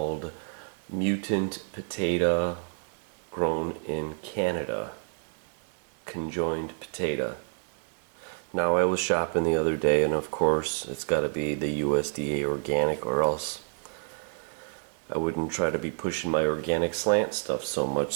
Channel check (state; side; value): silent; left; 56 dB below the other